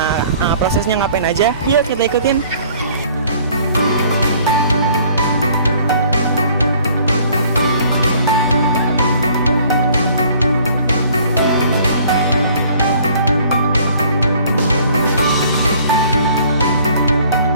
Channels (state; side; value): inverted; both; correlation -0.56